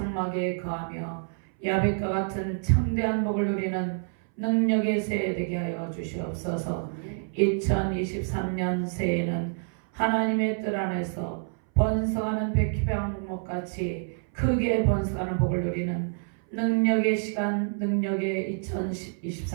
거하며 야벳과 같은 창대한 복을 누리는 능력의 새해 되게 하여 주시옵소서. 2023년 새해는 하나님의 뜻 안에서 번성하는 백희병목같이 크게 번성하는 복을 누리는 능력의 시간, 능력의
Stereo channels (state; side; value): silent; left; 60 dB below the other